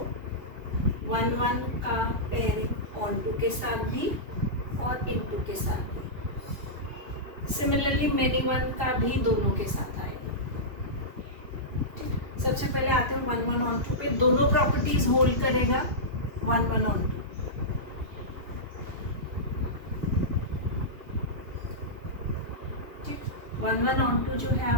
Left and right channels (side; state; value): left; late; 2.8 ms